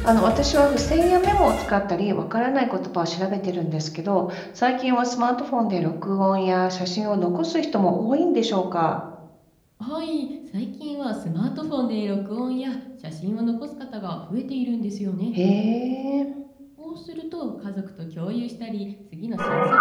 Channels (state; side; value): identical; both; correlation 1.00